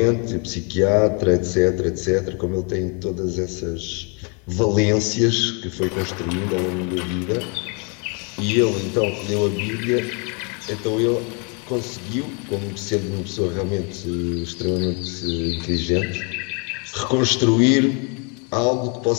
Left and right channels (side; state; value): right; quieter; 35.3 dB